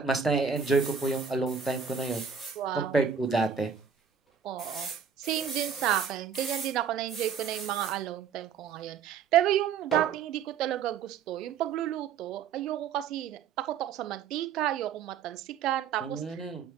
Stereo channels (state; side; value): quieter; left; 6.9 dB